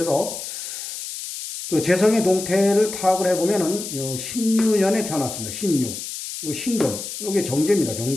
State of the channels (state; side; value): noise; left; hiss, 8 dB below the sound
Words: 그 재성의 동태를 파악을 해 보면은 신유년에 태어났습니다. 신유, 요 신금, 요게 정제입니다.